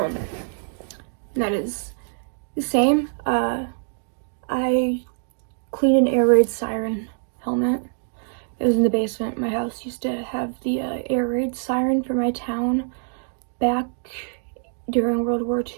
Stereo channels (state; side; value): silent; left; digital silence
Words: that is the same. I cleaned an air raid siren helmet. It was in the basement. My house used to have the air raid siren for my town back during World War